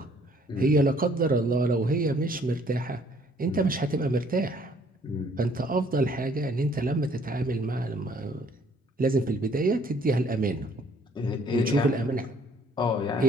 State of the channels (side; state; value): both; normal; correlation 0.61